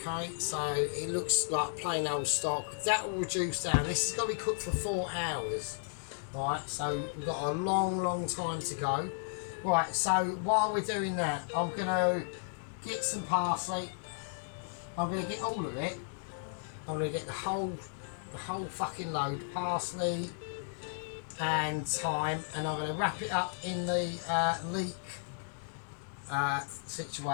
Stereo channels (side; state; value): right; silent; digital silence